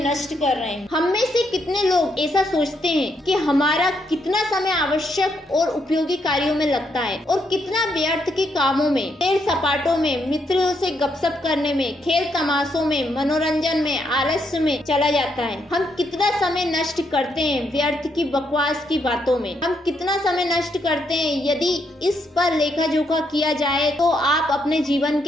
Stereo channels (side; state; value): both; normal; correlation 0.77